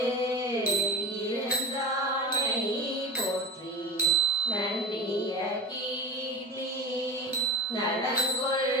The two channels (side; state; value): both; normal; correlation 0.28